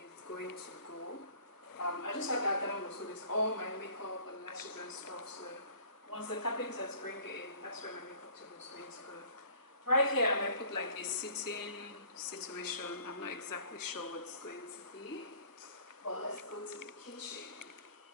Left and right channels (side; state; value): right; late; 1.1 ms